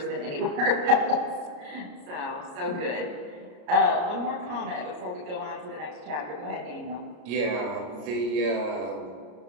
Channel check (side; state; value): left; late; 33 ms